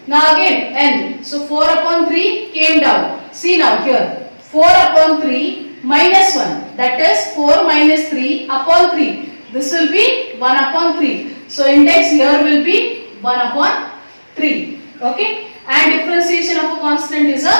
Now again n. So 4 upon 3 came down. See now here. 4 upon 3 minus 1. That is 4 minus 3 upon 3. This will be 1 upon 3. So index here will be 1 upon 3. Okay. And differentiation of a constant is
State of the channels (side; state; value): both; inverted; correlation -1.00